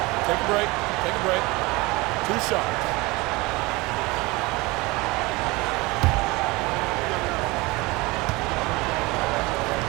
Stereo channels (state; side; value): quieter; left; 23.3 dB